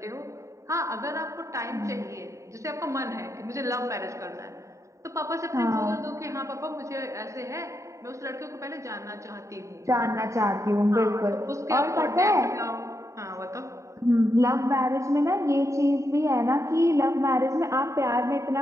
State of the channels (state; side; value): late; left; 0.15 ms